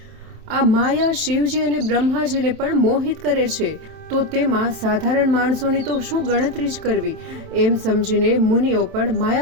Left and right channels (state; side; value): late; left; 27 ms